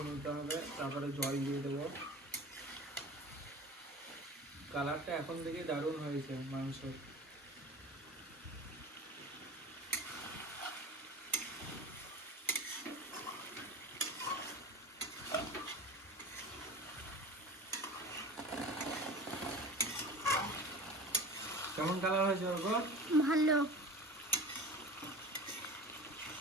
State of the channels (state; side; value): normal; both; correlation 0.36